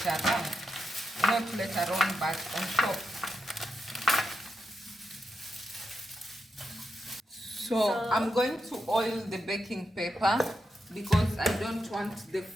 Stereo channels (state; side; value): normal; both; correlation 0.86